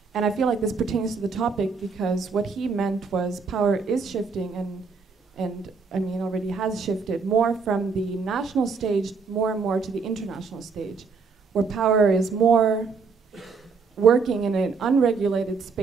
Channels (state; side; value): quieter; left; 4.9 dB